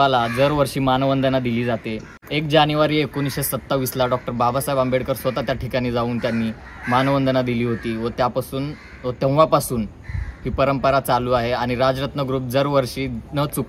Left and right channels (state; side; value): identical; both; correlation 1.00